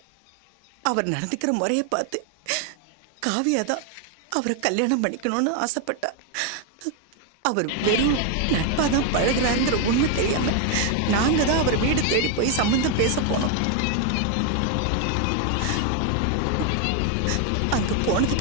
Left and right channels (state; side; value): different; both; correlation 0.01